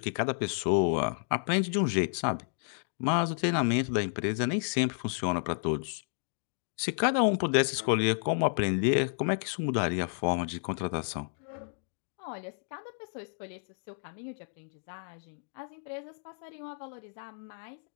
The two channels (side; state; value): right; silent; digital silence